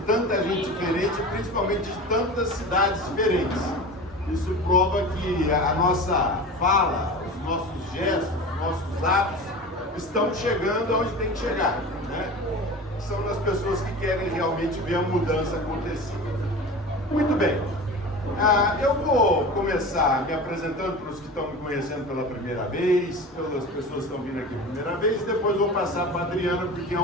tanta gente diferente, principalmente de tantas cidades diferentes. Isso prova que a nossa fala, os nossos gestos, os nossos atos estão chegando aonde tem que chegar, né? São das pessoas que querem realmente ver a mudança acontecer. Muito bem. Eu vou começar me apresentando para os que estão me conhecendo pela primeira vez, pelas pessoas que estão vindo aqui pela primeira vez, e depois vou passar para a Adriana, porque é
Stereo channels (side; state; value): both; normal; correlation 0.33